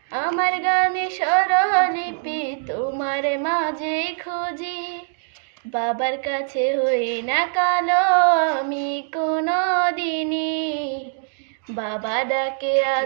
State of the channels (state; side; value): silent; left; digital silence